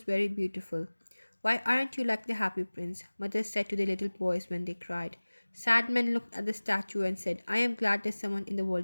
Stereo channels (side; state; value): both; inverted; correlation -1.00